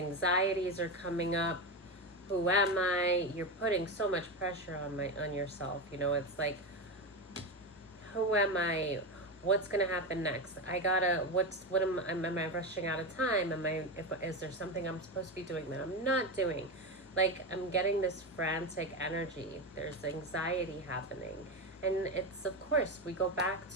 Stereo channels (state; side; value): normal; both; correlation 0.15